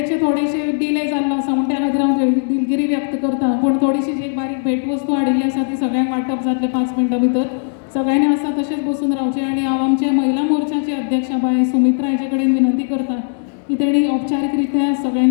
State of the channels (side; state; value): right; silent; 67 dB below the other